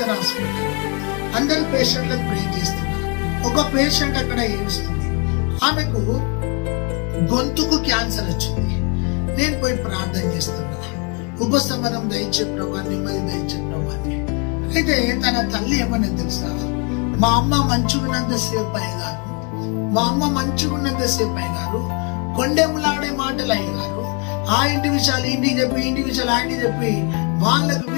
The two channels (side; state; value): right; quieter; 34.9 dB